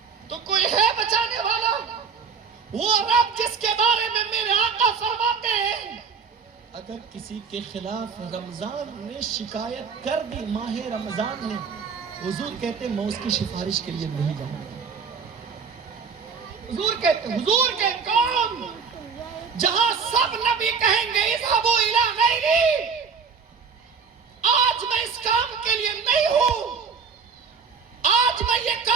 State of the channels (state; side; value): quieter; left; 5.8 dB